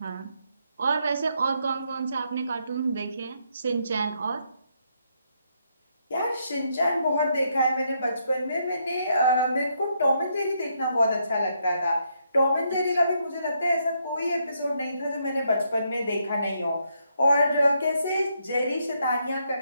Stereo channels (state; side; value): inverted; both; correlation -0.76